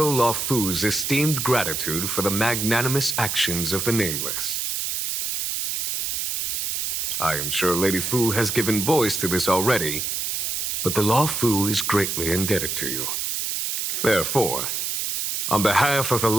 Luofu's esteemed gratitude for the magnanimous actions of the Nameless. I am sure Lady Fu has given voice to this already, but the Luofu is greatly indebted to you. Therefore, on behalf of the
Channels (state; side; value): noise; right; hiss, 1 dB below the sound